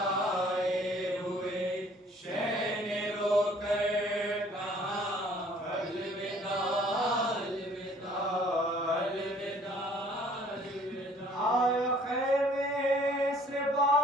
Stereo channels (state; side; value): normal; both; correlation 0.56